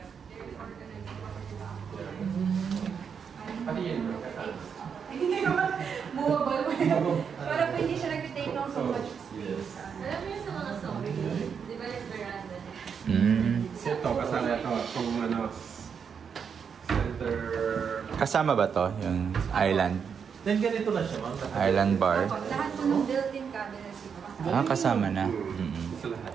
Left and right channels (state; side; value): quieter; left; 6.8 dB